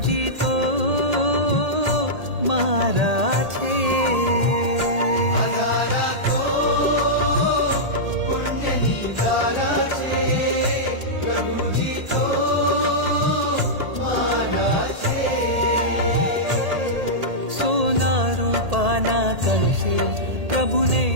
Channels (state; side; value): late; left; 1.8 ms